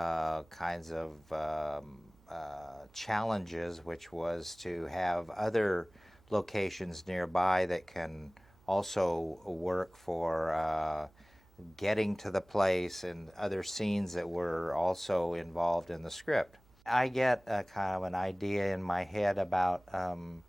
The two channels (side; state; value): right; noise; hum, 29 dB below the sound